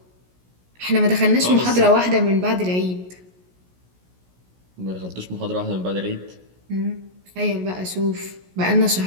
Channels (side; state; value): left; late; 16 ms